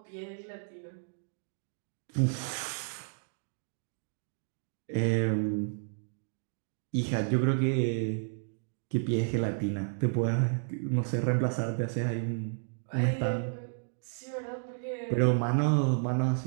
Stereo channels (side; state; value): left; silent; digital silence